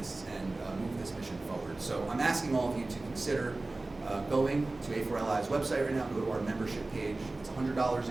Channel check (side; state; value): left; quieter; 3.1 dB